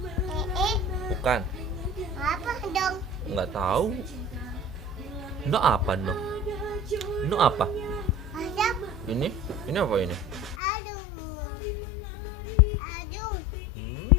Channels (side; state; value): right; drops out; at 10.6 s